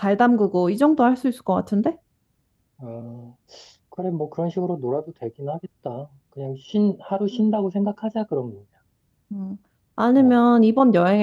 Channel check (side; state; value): both; identical; correlation 1.00